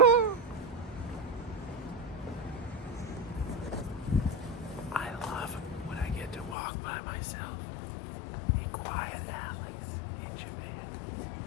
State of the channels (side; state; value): right; drops out; at 6.6 s